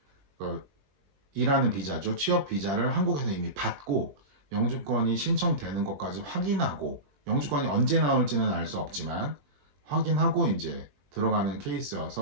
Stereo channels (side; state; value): left; late; 21 ms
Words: 그 일하는 비자죠. 취업 비자를 한국에서 이미 받고 영주권이 신청되는 것까지 확인하고 영주권이 언제 나올지는 알 수 없지만 확인하고 이제 들어가는